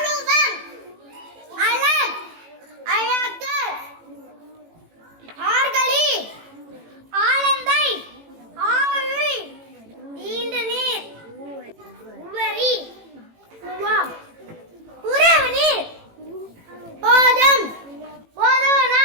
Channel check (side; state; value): left; late; 18 ms